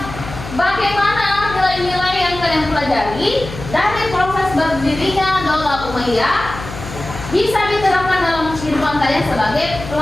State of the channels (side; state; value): left; noise; hum, 11 dB below the sound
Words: bagaimana nilai-nilai yang kalian pelajari dari proses berdirinya Daulah Umayyah bisa diterapkan dalam kehidupan kalian sebagai